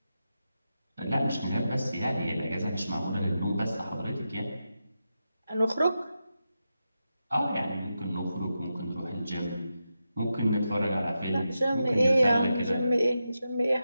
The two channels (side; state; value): both; inverted; correlation -0.89